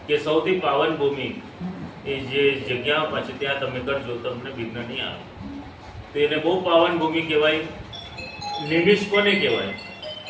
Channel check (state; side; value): identical; both; correlation 1.00